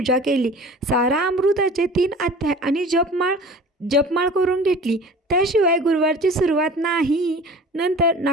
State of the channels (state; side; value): normal; both; correlation 0.42